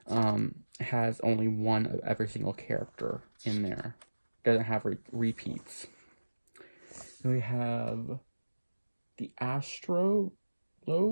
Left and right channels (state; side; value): inverted; both; correlation -1.00